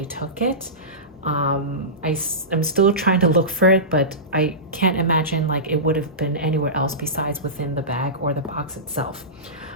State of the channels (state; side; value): normal; both; correlation -0.20